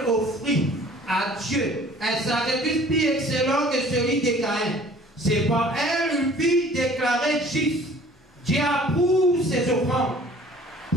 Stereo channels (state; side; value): normal; both; correlation 0.51